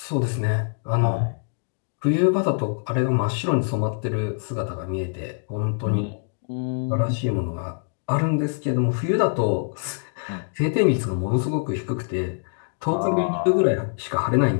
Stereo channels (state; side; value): silent; right; digital silence